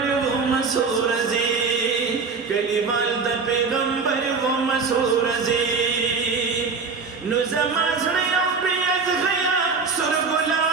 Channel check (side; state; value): left; quieter; 4.9 dB